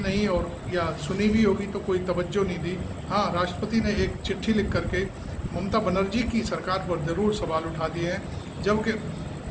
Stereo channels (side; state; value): both; identical; correlation 1.00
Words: और या सुनी भी होगी तो कोई तवज्जो नहीं दी। हाँ, राष्ट्रपति ने एक चिट्ठी लिख करके ममता बनर्जी की सरकार पर ज़रूर सवाल उठा दिए हैं। जबकि